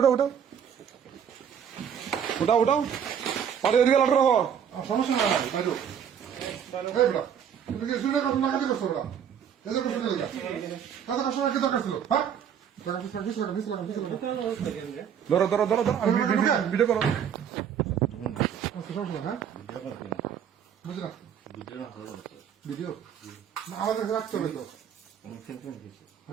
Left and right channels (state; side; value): quieter; left; 8.3 dB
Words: উঠো উঠাও উঠাও পাটি দিয়ে আলাদা রাখো সমস্যা নাই বাইরো এই বড় তুমি কি শুনে কথা না কাজে করছো বড় এজে করছো না কাজে কাস্টমার কি দরকার ছিল হ্যাঁ ধরো ধরো ধরো ধরো ভিডিও করো সমস্যা হ্যাঁ বুঝলা ভিডিও না আমাদের রাখতে হবে তো